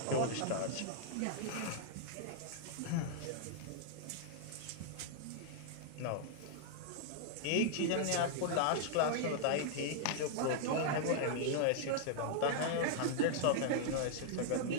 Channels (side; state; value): both; different; correlation -0.01